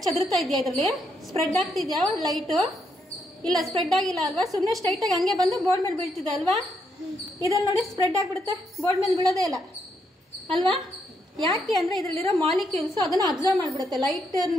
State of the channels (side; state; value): both; normal; correlation 0.78